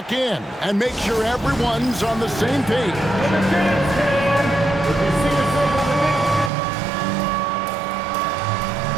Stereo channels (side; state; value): left; drops out; at 6.5 s